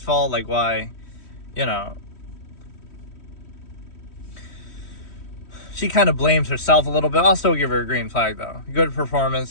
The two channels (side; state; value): right; late; 3.1 ms